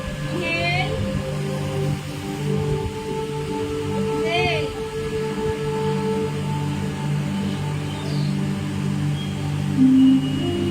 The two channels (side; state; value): both; identical; correlation 1.00